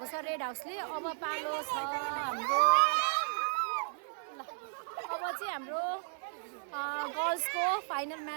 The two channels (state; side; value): silent; left; digital silence